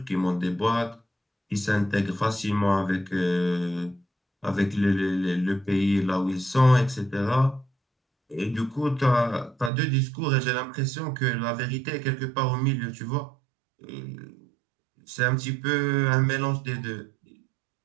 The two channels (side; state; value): left; drops out; at 9.7 s